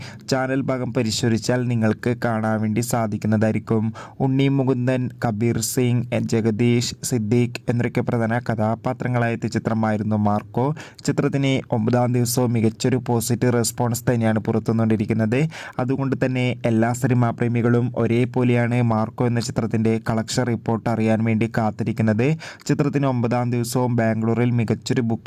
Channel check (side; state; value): both; identical; correlation 1.00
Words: ചാനൽ ഭാഗം പരിശോധിച്ചാൽ നിങ്ങൾക്ക് കാണാൻ വേണ്ടി സാധിക്കുന്നതായിരിക്കും. ഉണ്ണി മുകുന്ദൻ, കബീർ സിംഗ്, ജഗദീഷ്, സിദ്ദീഖ് എന്നൊക്കെ പ്രധാന കഥാപാത്രങ്ങളായ ചിത്രമായിരുന്നു മാർക്കോ. ചിത്രത്തിന് 9-ാം ദിവസവും മികച്ചൊരു പോസിറ്റീവ് റെസ്പോൺസ് തന്നെയാണ് പുറത്തുവന്നുകൊണ്ടിരിക്കുന്നത്. അതുകൊണ്ട് തന്നെ എല്ലാ സിനിമാ പ്രേമികളും ഒരേപോലെയാണ് മാർക്കോ എന്ന ചിത്രത്തിൻ്റെ കളക്ഷൻ റിപ്പോർട്ട് അറിയാൻ വേണ്ടി കാത്തിരിക്കുന്നത്. ചിത്രത്തിന് 9-ാം ദിവസവും ബാംഗ്ലൂരിൽ മികച്ചൊരു